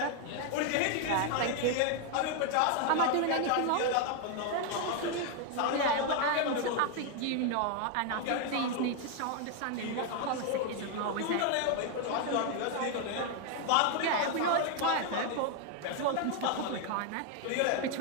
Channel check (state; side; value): different; both; correlation 0.01